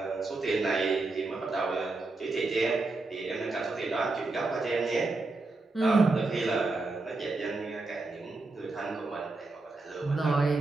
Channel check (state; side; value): quieter; left; 3.3 dB